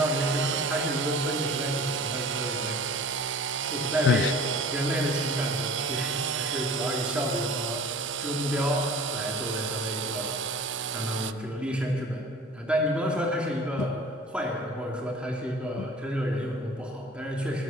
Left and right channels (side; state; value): both; normal; correlation 0.43